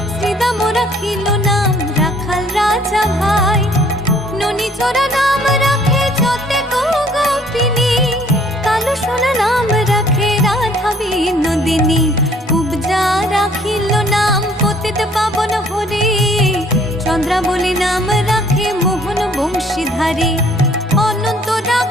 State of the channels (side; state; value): both; normal; correlation 0.59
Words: শ্রীদাম রাখিল নাম রাখাল রাজা ভাই। ননী চোরা নাম রাখে যতে গোপিনী, কালো সোনা নাম রাখে রাধা বিনোদিনী। কুবজা রাখিল নাম পতিত পাবন হরি, চন্দ্রাবলী নাম রাখে মোহন বংশীধারী। অনন্ত